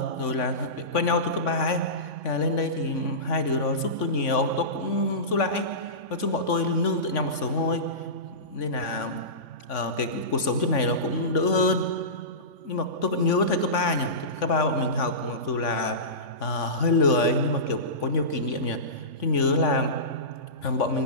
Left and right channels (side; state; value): right; late; 3.5 ms